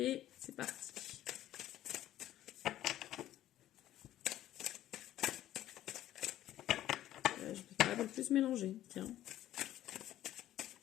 C'est parti. Je peux pas plus mélanger. Tiens.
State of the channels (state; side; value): quieter; right; 13.3 dB